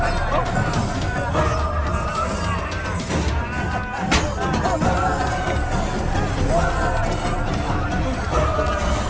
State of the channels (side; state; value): both; identical; correlation 1.00